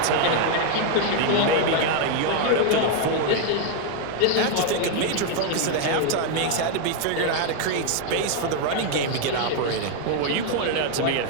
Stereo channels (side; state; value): both; different; correlation 0.00